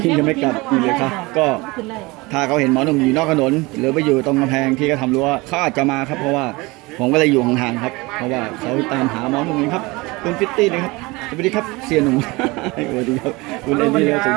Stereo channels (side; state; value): left; quieter; 23.4 dB